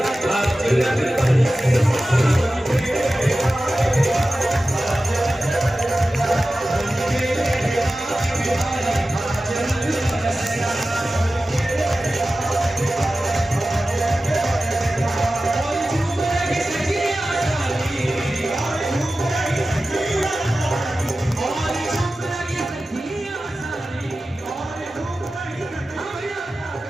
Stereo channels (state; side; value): normal; both; correlation 0.95